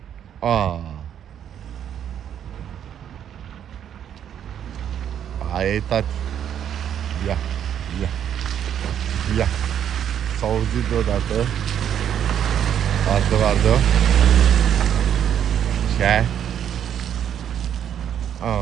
Aia e, tati. Ia, ia, ia. S-a auzit deodată. Vardă. Ce?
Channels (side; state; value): left; quieter; 9.5 dB